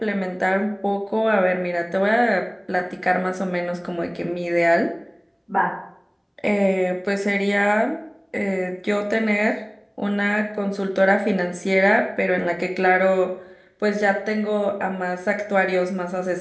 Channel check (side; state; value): both; identical; correlation 1.00